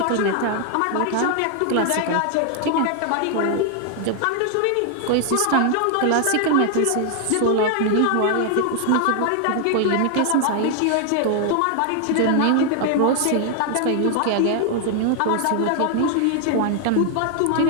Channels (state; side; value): different; both; correlation 0.00